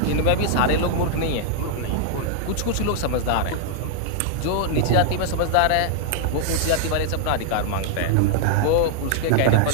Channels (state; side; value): different; both; correlation -0.01